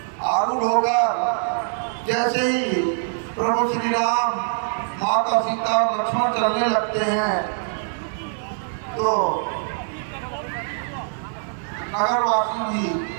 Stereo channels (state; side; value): silent; left; digital silence